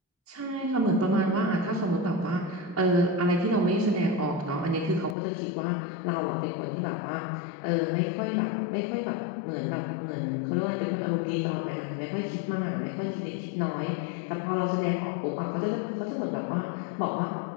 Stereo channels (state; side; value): drops out; right; at 5.2 s